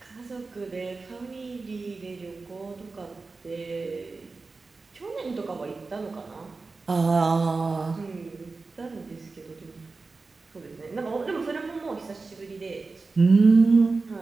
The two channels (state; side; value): quieter; left; 3.9 dB